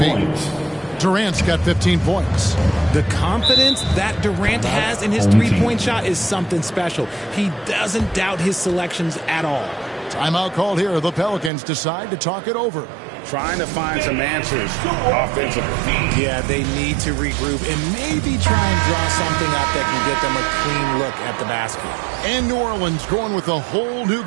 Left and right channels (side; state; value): left; drops out; at 11.5 s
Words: Durant's got 15 points. The confidence that Durant has in his three-point shot is something special. He doesn't doubt his selections at all. Timeout called here. The Pelicans decide to talk it over. Trying to find some answers offensively. Yeah, they need to regroup and maybe try and draw something up that can get them a clean look at the basket. And New Orleans going with a whole new